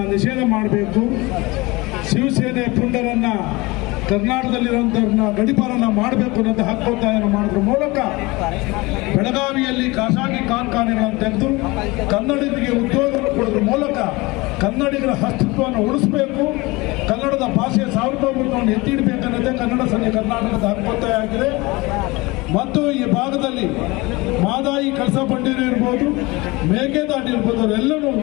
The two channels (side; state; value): right; quieter; 23.2 dB